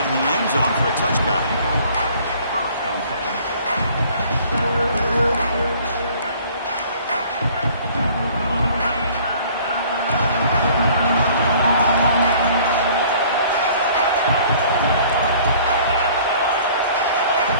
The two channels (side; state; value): both; inverted; correlation -0.53